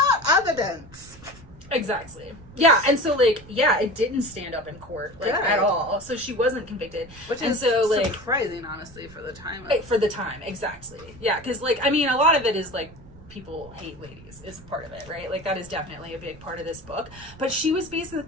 evidence. Exactly. Yeah, and so, like, it didn't stand up in court, like, at all. So she wasn't convicted. Which is surprising, honestly, for the time. For the time, exactly. Yeah, because, like, I mean, a lot of it is, like, people hate ladies is part of it, right? Like, that is definitely a big part of this book. But she was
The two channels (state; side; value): noise; right; rumble, 21 dB below the sound